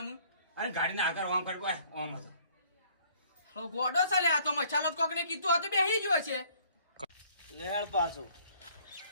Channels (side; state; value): both; inverted; correlation -0.59